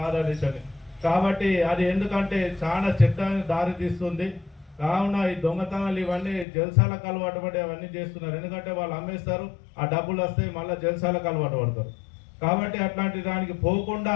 కాబట్టి అది ఎందుకంటే చాలా చట్టానికి దారి తీస్తుంది. కావున ఈ దొంగతనాలు ఇవన్నీ జల్సాలకు అలవాటు పడి అవన్నీ చేస్తున్నారు. ఎందుకంటే వాళ్ళు అమ్మేస్తారు, ఆ డబ్బులు వస్తాయి, మళ్ళీ జల్సాలకు అలవాటు పడతారు. కాబట్టి అట్లాంటి దానికి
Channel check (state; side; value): drops out; right; at 6.5 s